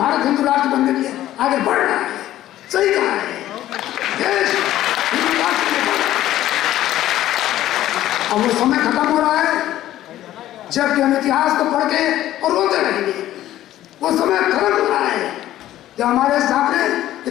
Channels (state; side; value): quieter; right; 13.6 dB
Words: हिंदू राष्ट्र बनने के लिए आगे बढ़ रहा है, सही कहा है, देश हिंदू राष्ट्र के लिए बढ़ रहा है। अब वो समय खत्म हो रहा है जबकि हम इतिहास को पढ़ के और रोते रहेंगे। वो समय खत्म हो रहा है जब हमारे सामने